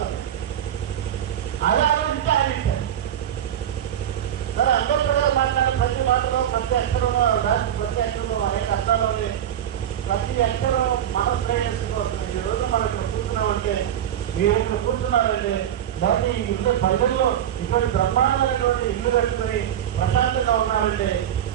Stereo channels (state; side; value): quieter; left; 10.4 dB